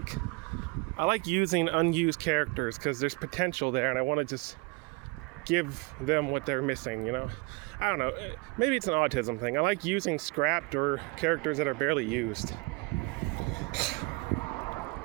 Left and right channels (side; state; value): left; quieter; 27.3 dB